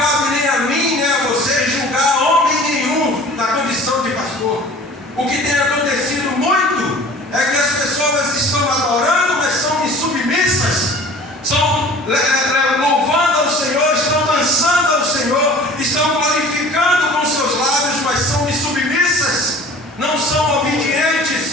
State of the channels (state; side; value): normal; both; correlation 0.45